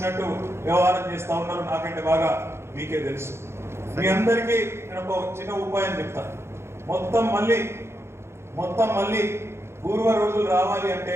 వ్యవహారం చేస్తా ఉన్నారు. నాకంటే బాగా మీకే తెలుసు. మీ అందరికీ నేను ఒక చిన్న ఉపాయం చెప్తాను. మొత్తం మళ్ళీ పూర్వ రోజులు రావాలి అంటే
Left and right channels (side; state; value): left; late; 0.12 ms